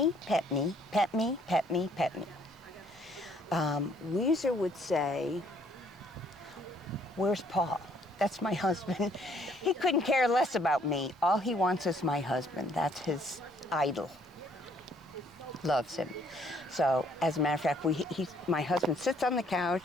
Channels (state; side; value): normal; both; correlation 0.64